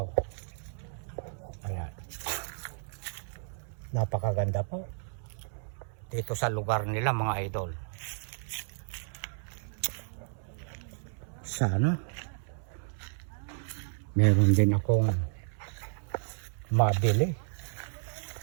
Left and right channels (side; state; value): left; silent; 56 dB below the other